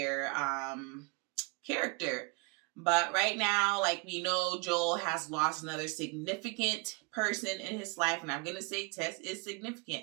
character. But right now, like we know, Joel has lost another significant person in his life. And I'm going to say Tess is significant.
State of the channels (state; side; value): quieter; left; 29.6 dB